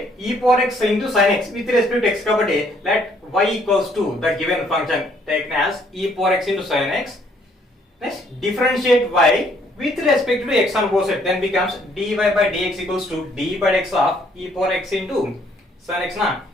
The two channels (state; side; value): normal; both; correlation 0.65